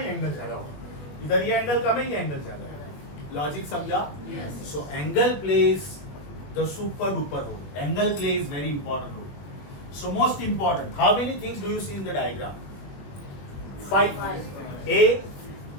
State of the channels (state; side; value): late; right; 21 ms